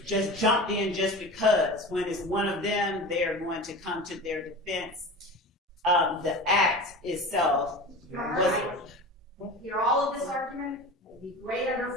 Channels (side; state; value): both; normal; correlation 0.32